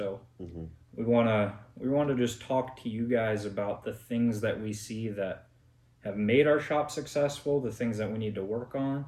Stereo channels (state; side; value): identical; both; correlation 1.00